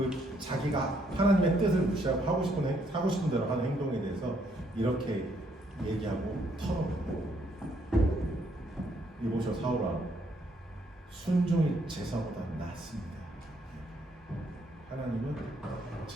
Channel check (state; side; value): normal; both; correlation 0.71